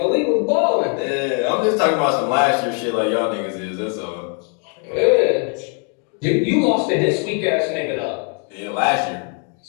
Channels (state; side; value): quieter; right; 39.0 dB